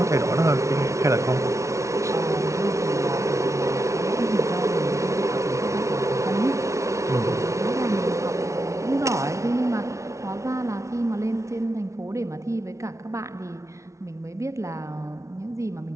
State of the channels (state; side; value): late; left; 0.14 ms